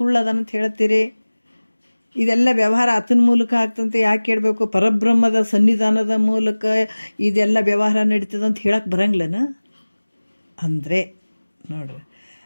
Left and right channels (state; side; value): inverted; both; correlation -1.00